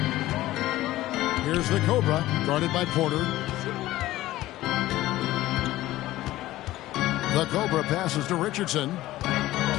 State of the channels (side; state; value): right; quieter; 16.0 dB